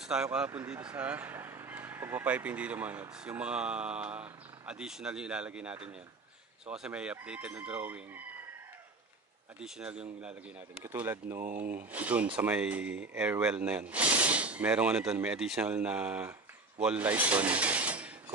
tayo kahapon dito sa pagpapiping dito mga Lods. Yung mga additional yung ilalagay natin yan. So kasi may updated na drawing. Additional yung ilalagay natin. Katulad nung dun sa may airwell na yan. Merong dun, may additional na wall light dun.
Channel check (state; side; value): quieter; left; 3.4 dB